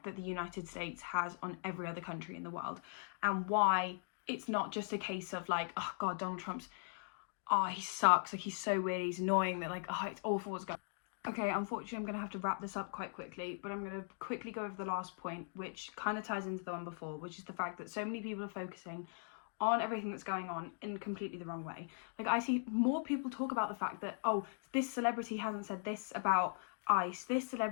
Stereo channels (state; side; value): silent; right; digital silence